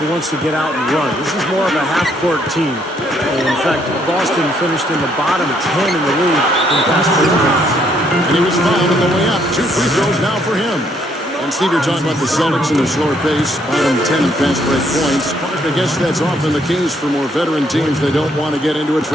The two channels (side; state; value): both; normal; correlation 0.69